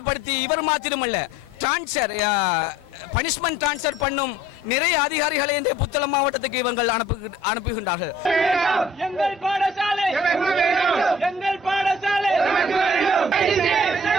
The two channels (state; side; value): normal; both; correlation 0.54